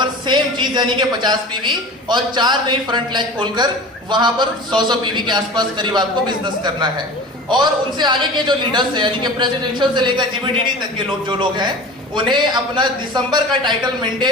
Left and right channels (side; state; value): both; normal; correlation 0.36